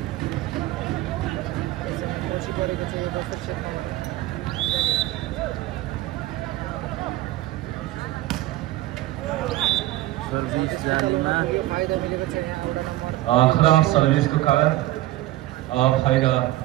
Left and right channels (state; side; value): quieter; left; 16.4 dB